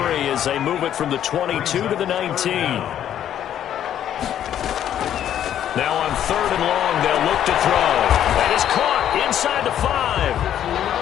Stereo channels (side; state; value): right; quieter; 10.5 dB